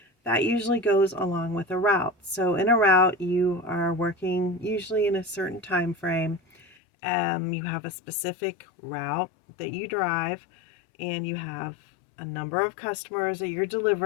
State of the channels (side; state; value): right; drops out; at 6.8 s